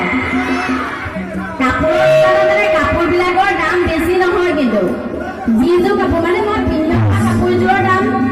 কাপোৰবিলাকৰ দাম বেছি নহয় কিন্তু যিযোৰ কাপোৰ মানে মই পিন্ধা কাপোৰযোৰৰ দাম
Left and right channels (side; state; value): both; identical; correlation 1.00